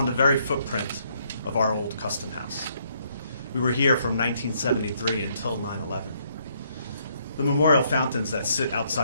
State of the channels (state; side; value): inverted; both; correlation -0.70